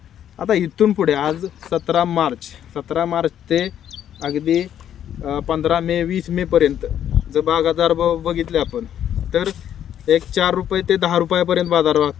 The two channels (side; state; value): right; quieter; 10.2 dB